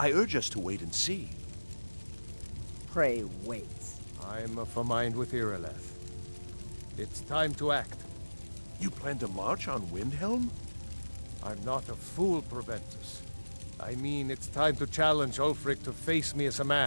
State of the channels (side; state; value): both; inverted; correlation -1.00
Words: urge us to wait and see. Pray wait. I'm of a mind with Irileth. It's time to act. You plan to march on Windhelm? I'm not a fool, Proventus. I mean, it's time to challenge Ulfric to face me as a